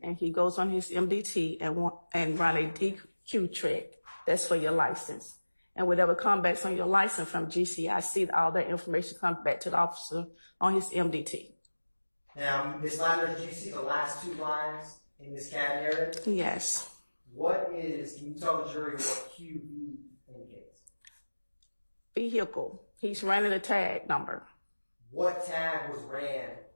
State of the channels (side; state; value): both; inverted; correlation -1.00